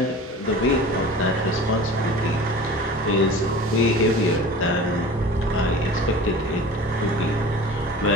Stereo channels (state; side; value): normal; both; correlation 0.38